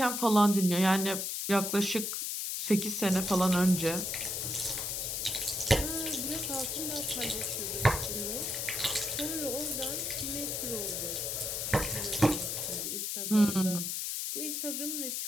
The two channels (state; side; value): noise; left; hiss, 2 dB below the sound